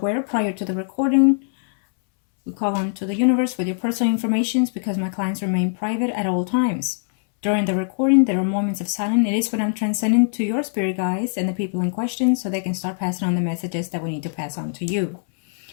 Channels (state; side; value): silent; right; 64 dB below the other